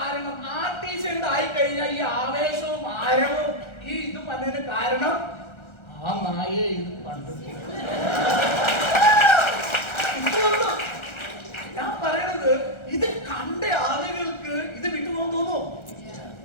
RTC ഉണ്ടായി കഴിഞ്ഞാൽ ഈ ആവേശവും ആരവവും ഈ ഇത് പറഞ്ഞതിന് കാരണം ആ നായയെ ഇത് കണ്ടിട്ടില്ല. ഞാൻ പറയണത് ഇത് കണ്ട ആളുകൾക്ക് ഇത് വിട്ടുപോകാൻ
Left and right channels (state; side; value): late; right; 1.3 ms